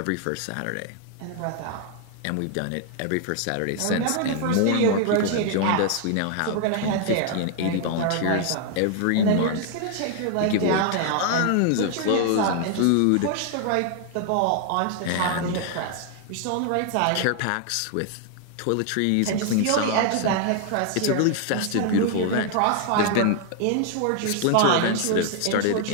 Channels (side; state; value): both; different; correlation 0.00